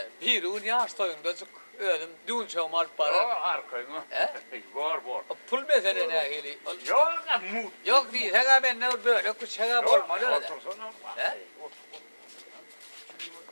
Bir un yaş toyunda çık. Öldüm. Dün çomar O para. arkayın. He? Bor. Pul mesele ne hili? Yok mut. Yok değil. Hega ben ne böyle kuşağa olmadı öyle. Otursana. He?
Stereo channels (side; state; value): both; inverted; correlation -1.00